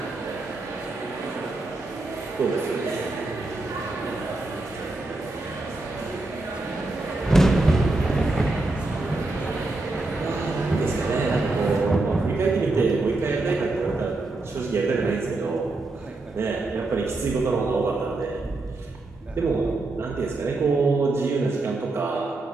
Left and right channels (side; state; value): left; quieter; 3.1 dB